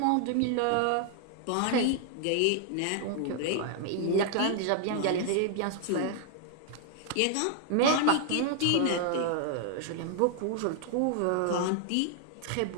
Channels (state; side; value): different; both; correlation 0.00